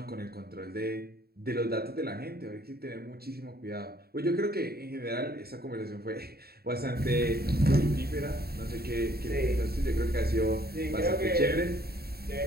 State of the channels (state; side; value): late; left; 0.45 ms